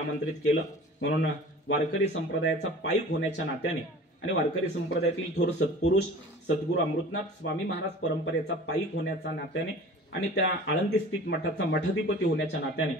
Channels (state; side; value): normal; both; correlation 0.42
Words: केलं म्हणून वारकरी संप्रदायाचा पाईक होण्याच्या नात्याने आणि वारकरी संप्रदायातील थोर सत्पुरुष सद्गुरू अमृतनाथ स्वामी महाराज परंपरेचा पाईक होण्याच्या नात्याने आणि त्या आळंदी स्थित मठाचा मठाधिपती होण्याच्या नात्याने,